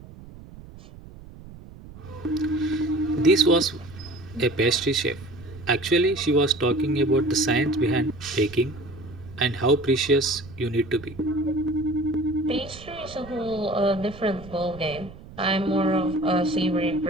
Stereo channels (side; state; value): right; noise; rumble, 17 dB below the sound